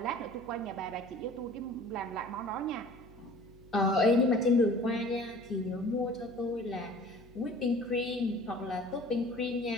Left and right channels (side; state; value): right; noise; hum, 20 dB below the sound